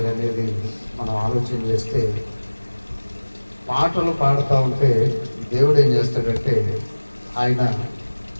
అనేది మనం ఆలోచన చేస్తే, పాటలు పాడుతూ ఉంటే దేవుడు ఏం చేస్తాడంటే, ఆయన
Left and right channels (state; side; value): inverted; both; correlation -1.00